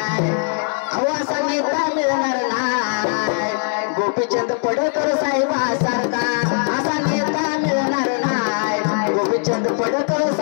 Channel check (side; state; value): right; silent; 63 dB below the other